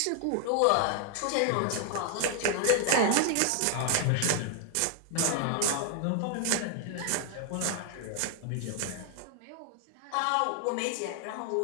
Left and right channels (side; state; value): both; different; correlation 0.00